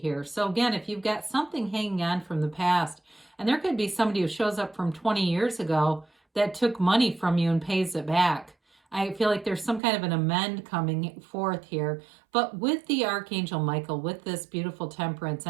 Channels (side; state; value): left; drops out; at 9.8 s